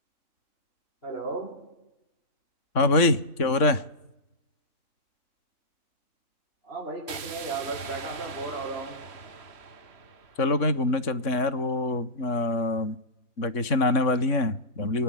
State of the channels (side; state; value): right; late; 3.6 ms